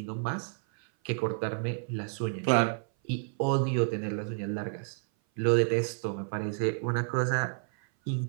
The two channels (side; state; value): left; silent; 56 dB below the other